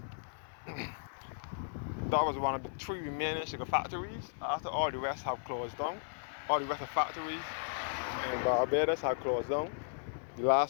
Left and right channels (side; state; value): right; silent; 54 dB below the other